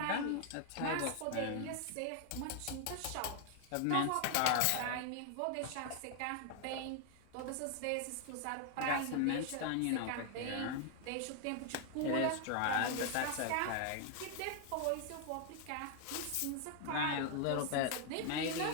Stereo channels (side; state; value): both; different; correlation 0.00